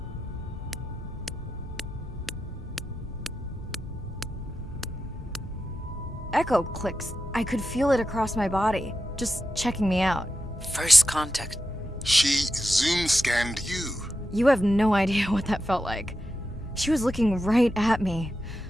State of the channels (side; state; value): both; normal; correlation 0.89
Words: Echo clicks. I could feel it across my body, just checking me out. First contact. She zoom scanned you. You have no idea what that felt like. She was looking right at me.